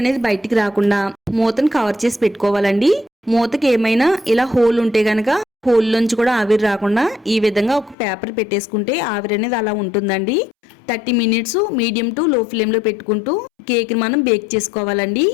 బయటికి రాకుండా మూతను కవర్ చేసి పెట్టుకోవాలండి. మూతకి ఏమైనా ఇలా హోల్ ఉంటే గనక హోల్ నుంచి కూడా ఆవిరి రాకుండా ఈ విధంగా ఒక పేపర్ పెట్టేసుకుంటే ఆవిరి అనేది అలా ఉంటుందండి. 30 మినిట్స్ మీడియం టు లో ఫ్లేమ్ లో పెట్టుకుంటూ కేక్ ని మనం బేక్ చేసుకోవాలండి.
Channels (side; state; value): right; drops out; at 8.0 s